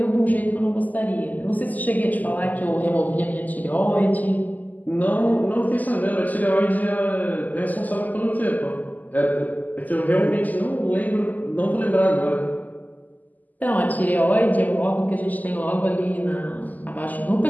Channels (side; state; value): right; late; 0.081 ms